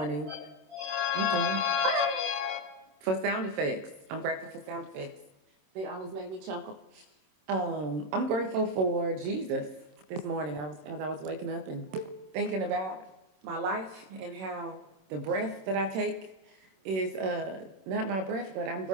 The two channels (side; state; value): left; late; 27 ms